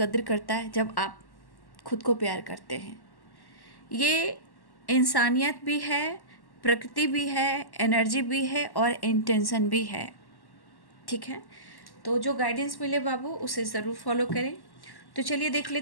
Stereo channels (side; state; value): right; late; 1.1 ms